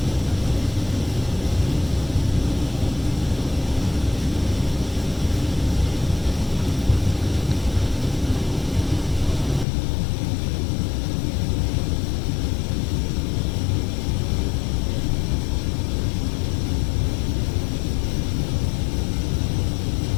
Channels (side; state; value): right; drops out; at 9.7 s